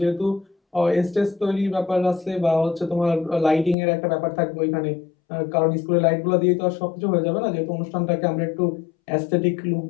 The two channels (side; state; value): right; drops out; at 3.8 s